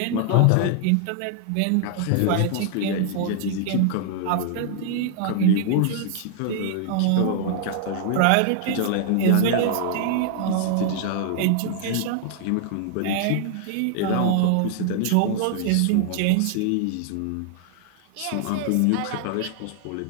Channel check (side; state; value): both; different; correlation 0.00